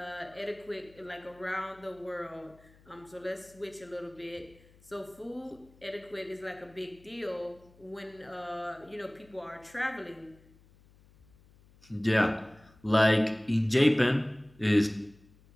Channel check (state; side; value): noise; left; hum, 27 dB below the sound